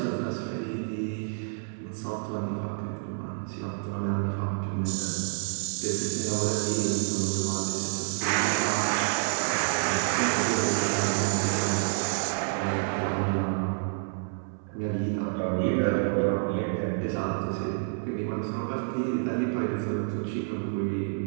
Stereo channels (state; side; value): silent; left; 59 dB below the other